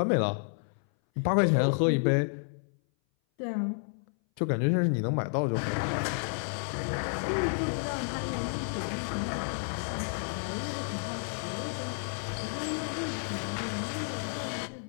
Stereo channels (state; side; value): silent; right; 57 dB below the other